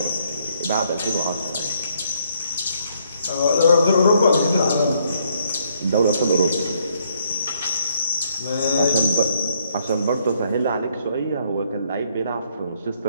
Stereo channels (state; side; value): inverted; both; correlation -0.69